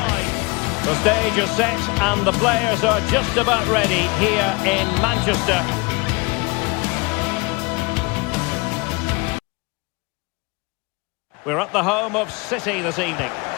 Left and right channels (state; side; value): quieter; right; 27.7 dB